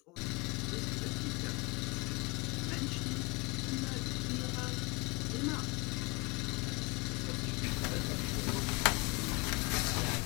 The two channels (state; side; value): quieter; right; 27.1 dB